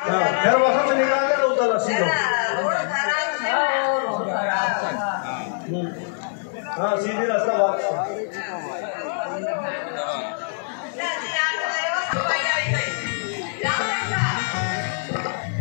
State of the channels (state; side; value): silent; right; digital silence